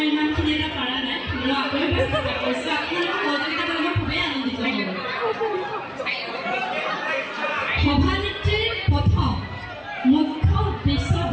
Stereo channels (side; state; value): both; identical; correlation 1.00